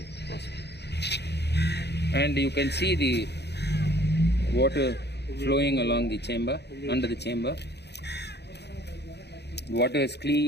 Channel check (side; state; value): right; late; 0.49 ms